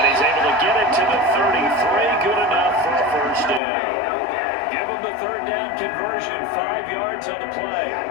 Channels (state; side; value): drops out; right; at 3.6 s